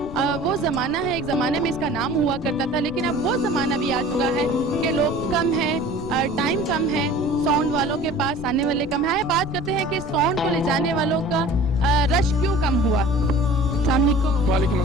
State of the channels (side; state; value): left; noise; rumble, 14 dB below the sound